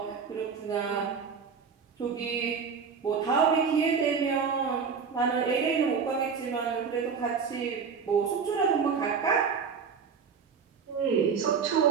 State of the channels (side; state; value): left; quieter; 6.0 dB